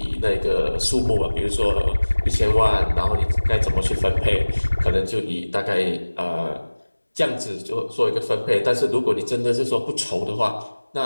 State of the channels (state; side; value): inverted; both; correlation -1.00